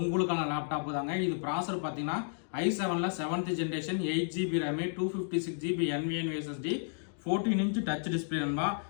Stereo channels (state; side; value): silent; right; digital silence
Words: லேப்டாப் தாங்க இது. ப்ராசர் பார்த்தீங்கன்னா i7ல 7th generation 8GB RAM 256GB NVMe SSD 14 inch touch display நண்பா.